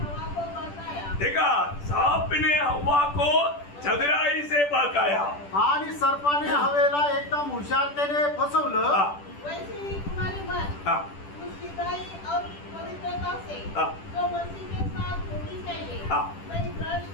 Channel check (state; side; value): late; right; 10 ms